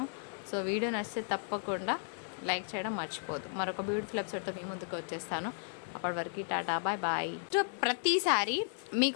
సో వీడియో నచ్చితే తప్పకుండా లైక్ చేయడం మర్చిపోదు. మరొక బ్యూటిఫుల్ ఎపిసోడ్తో మీ ముందుకు వచ్చేస్తాను. అప్పటి వరకు టాటా బాయ్ బాయ్. సో ప్రతిసారి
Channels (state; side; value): silent; right; 55 dB below the other